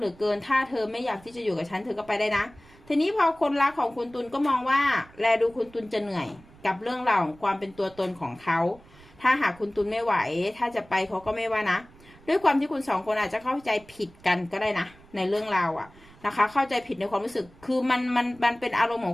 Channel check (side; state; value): right; noise; rumble, 24 dB below the sound